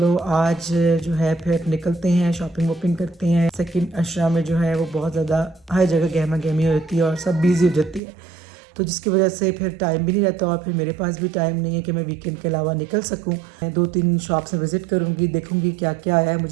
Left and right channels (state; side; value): drops out; left; at 8.0 s